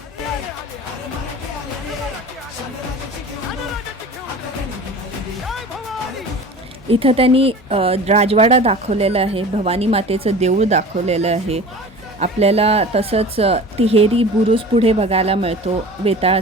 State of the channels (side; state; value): both; normal; correlation 0.38